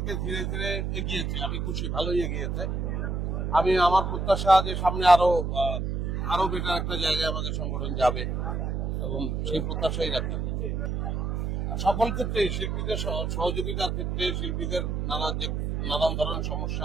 ধীরে ধীরে এগিয়েছে, আমি খুশি, ভালোই এগিয়েছে। আমি আমার প্রত্যাশা যে সামনে আরো বেটার একটা জায়গায় আমাদের সংগঠন যাবে এবং সেই প্রত্যাশাই রাখি। সকল ক্ষেত্রে শিল্পীদের সহযোগিতার ক্ষেত্রে শিল্পীদের নানান ধরনের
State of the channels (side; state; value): right; noise; hum, 1 dB below the sound